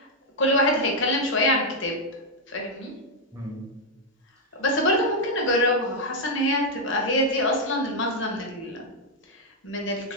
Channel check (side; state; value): both; normal; correlation 0.00